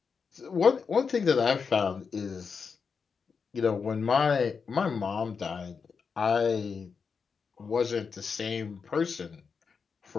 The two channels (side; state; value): right; quieter; 5.6 dB